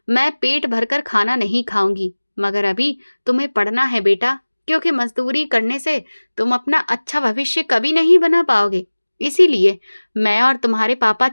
मैं पेट भरकर खाना नहीं खाऊंगी। मगर अभी तुम्हें पढ़ना है बेटा, क्योंकि मजदूरी करने से तुम अपना अच्छा भविष्य कभी नहीं बना पाओगे। इसीलिए मैं और तुम्हारे पापा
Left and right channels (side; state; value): both; inverted; correlation -1.00